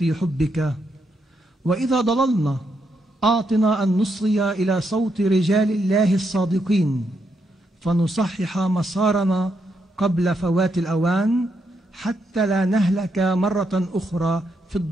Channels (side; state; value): both; normal; correlation 0.79